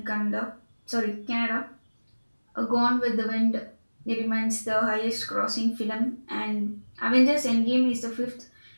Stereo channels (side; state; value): both; inverted; correlation -1.00